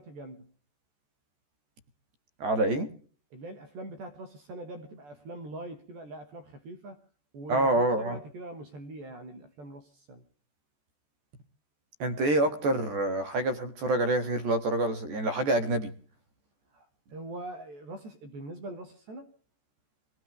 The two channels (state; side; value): late; left; 14 ms